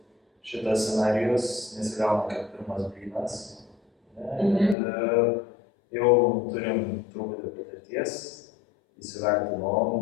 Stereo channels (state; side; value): drops out; right; at 4.8 s